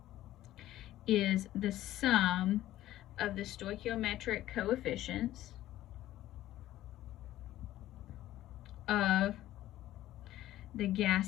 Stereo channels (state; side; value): quieter; right; 14.3 dB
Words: is the sum of the stoichiometric coefficients of the